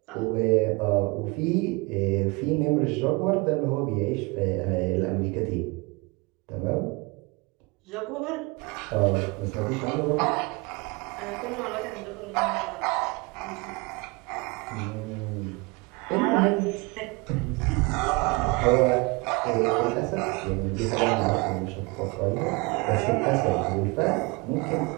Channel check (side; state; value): left; quieter; 26.9 dB